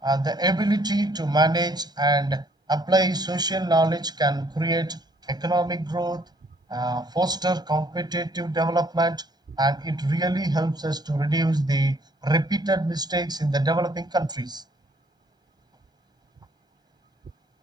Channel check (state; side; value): normal; both; correlation 0.63